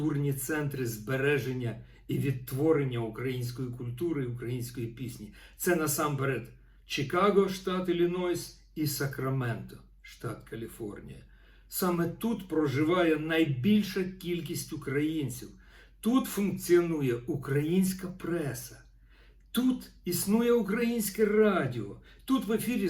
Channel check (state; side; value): identical; both; correlation 1.00